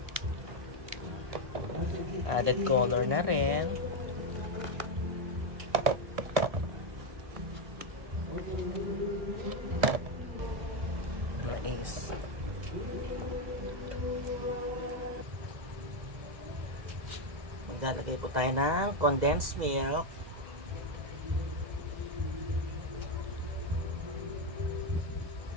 Added color na rin. Mais. Maglalagay po tayo ng condensed milk.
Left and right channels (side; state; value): left; late; 2.0 ms